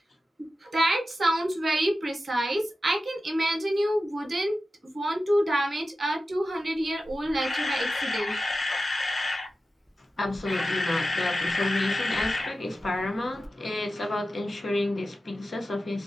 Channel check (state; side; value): normal; both; correlation 0.93